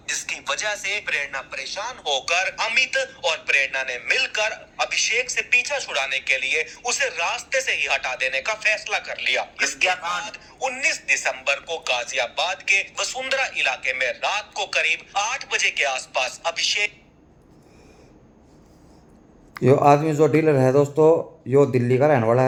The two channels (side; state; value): both; identical; correlation 1.00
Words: जिसकी वजह से प्रेरणा परेशान होकर अमित और प्रेरणा ने मिलकर अभिषेक से पीछा छुड़ाने के लिए उसे रास्ते से ही हटा देने का फैसला कर लिया। इसके बाद 19 दिसंबर को गाजियाबाद के वसुंधरा इलाके में रात को करीब 8 बजे के आसपास अभिषेक यो आदमी जो डीलर है दोस्तों, यो दिल्ली का रहने वाला